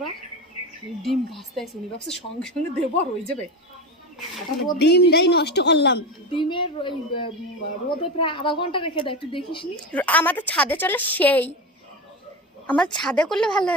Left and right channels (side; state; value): both; normal; correlation 0.22